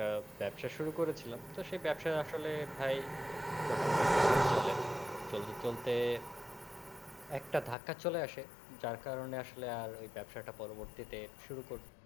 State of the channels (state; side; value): drops out; right; at 7.8 s